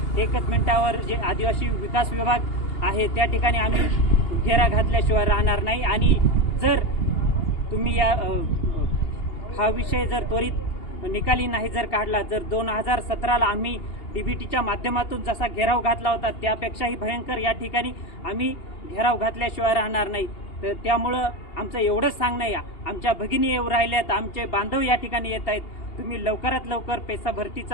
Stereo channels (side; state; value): right; late; 2.8 ms